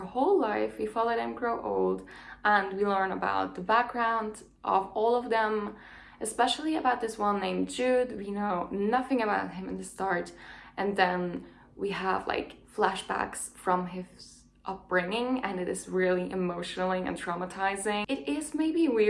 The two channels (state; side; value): identical; both; correlation 1.00